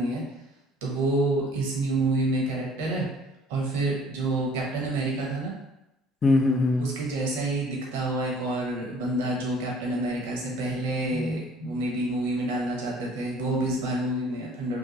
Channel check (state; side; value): normal; both; correlation 0.54